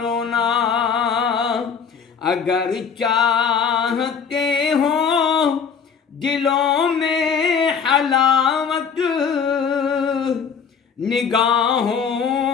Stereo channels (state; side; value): quieter; right; 6.5 dB